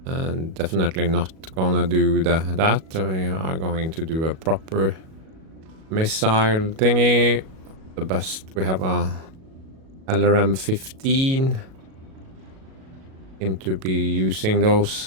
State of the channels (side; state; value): left; late; 37 ms